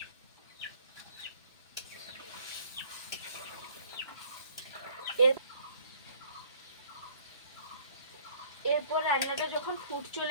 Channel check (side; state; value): both; inverted; correlation -0.56